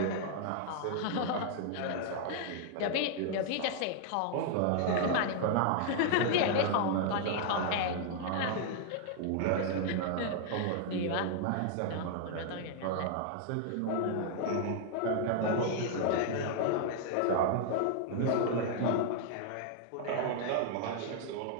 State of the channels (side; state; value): both; different; correlation 0.00